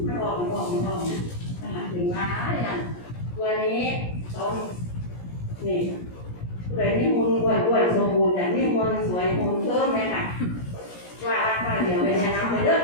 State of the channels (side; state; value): right; late; 17 ms